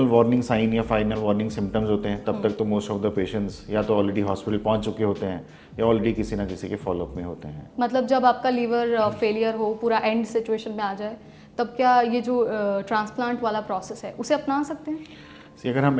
वार्निंग साइन या फाइनल वार्निंग सिम्टम्स होते हैं। तब तक तो मोस्ट ऑफ द पेशेंट्स या तो ऑलरेडी हॉस्पिटल पहुंच चुके होते हैं या ऑलरेडी किसी ना किसी के फॉलोअप में होते हैं। मतलब जब आपका लीवर फेलियर हो, पूरा एंड सिचुएशन में आ जाए, तब क्या ये जो ट्रांसप्लांट वाला प्रोसेस है उसे अपना सकते हैं? अगर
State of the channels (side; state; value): both; identical; correlation 1.00